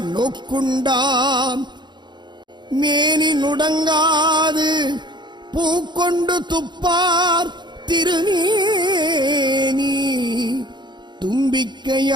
நோக்குண்டாம் மேனி நுடங்காது பூக்கொண்டு துப்பார் திருநேனி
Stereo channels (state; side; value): late; left; 0.22 ms